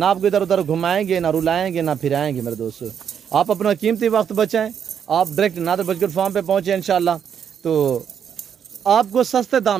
आपको इधर उधर घुमाएंगे, ना रुलाएंगे, ना फिराएंगे। मेरे दोस्तों आप अपना कीमती वक्त बचाएं, आप डायरेक्ट नादर बर्गर फार्म पे पहुँचे इंशाल्लाह, तो आपको सस्ते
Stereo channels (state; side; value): quieter; left; 8.1 dB